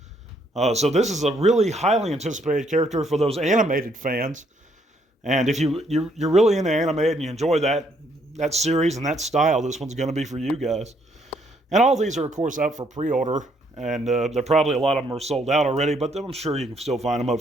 So this is a really highly anticipated character for those animated fans. And if you're really into animated and you enjoy that series and that style, this one's going to be for you guys. And all these are, of course, up for pre-order. And they're probably, a lot of them are sold out already, but I'm sure you can still find them up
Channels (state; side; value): normal; both; correlation 0.70